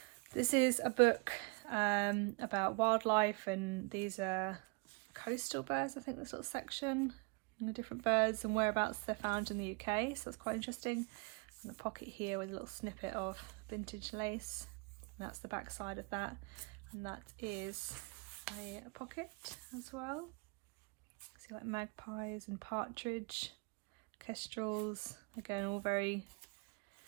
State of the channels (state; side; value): quieter; left; 31.5 dB